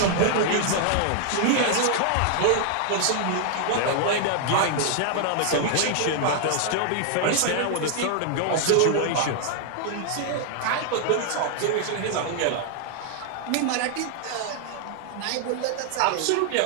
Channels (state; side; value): different; both; correlation 0.00